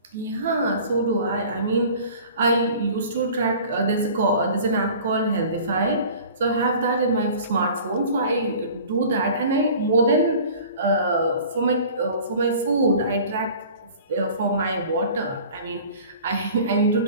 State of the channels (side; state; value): both; inverted; correlation -0.45